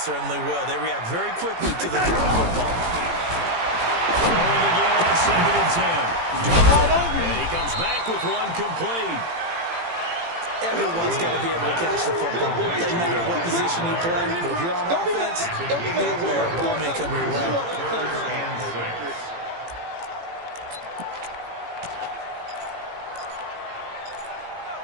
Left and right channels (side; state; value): left; late; 18 ms